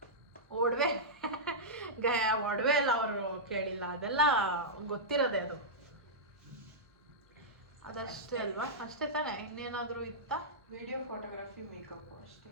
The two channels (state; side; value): normal; both; correlation -0.11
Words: ಒಡವೆ ಒಡವೆ ಎಲ್ಲ ಅವರು ಕೇಳಿಲ್ಲ, ಅದೆಲ್ಲ ಗೊತ್ತಿರೋದೆ. ಅದಷ್ಟೇ ಅಲ್ವಾ? ಅಷ್ಟೇ ತಾನೆ, ಇನ್ನೇನಾದರೂ ಇತ್ತಾ? ವಿಡಿಯೋ, ಫೋಟೋಗ್ರಫಿ, ಮೇಕಪ್ ಅಷ್ಟೇ.